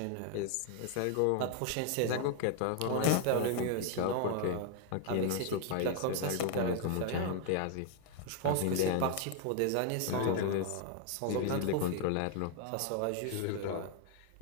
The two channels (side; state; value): both; different; correlation 0.00